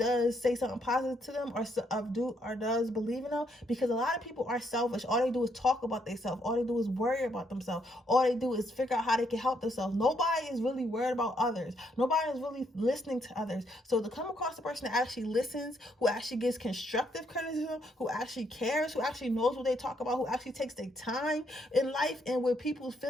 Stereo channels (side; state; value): both; normal; correlation 0.73